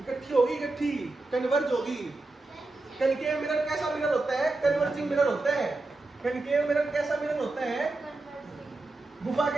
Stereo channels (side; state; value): left; quieter; 3.2 dB